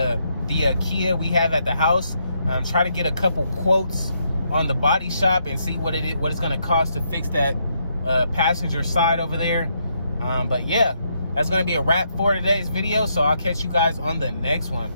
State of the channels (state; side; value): inverted; both; correlation -0.77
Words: Kia we have at the house. Try to get a couple quotes on the body shop and see what it's gonna cost to fix that passenger side over there. But yeah, that's gonna be a wrap for today's video, so I'll catch you guys on the next one.